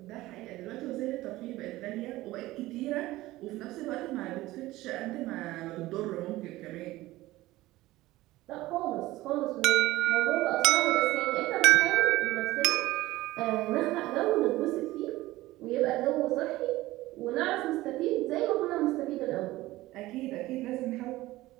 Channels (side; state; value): left; quieter; 17.6 dB